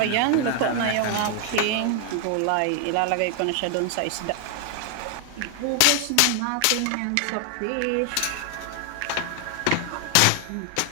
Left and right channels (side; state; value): both; different; correlation 0.00